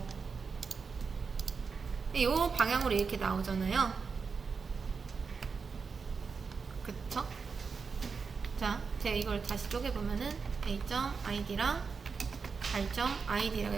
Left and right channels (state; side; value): quieter; left; 5.2 dB